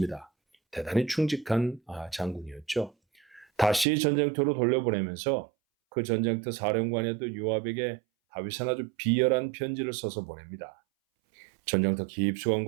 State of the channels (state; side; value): drops out; left; at 3.9 s